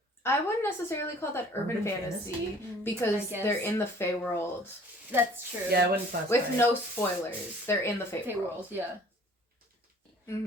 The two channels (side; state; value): both; normal; correlation 0.53